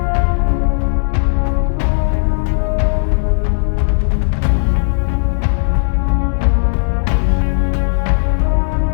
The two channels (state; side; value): silent; right; digital silence